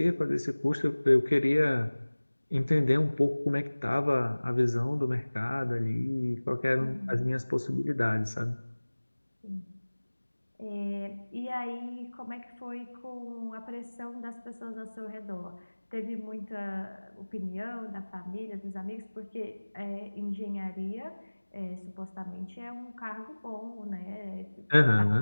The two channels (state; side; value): inverted; both; correlation -1.00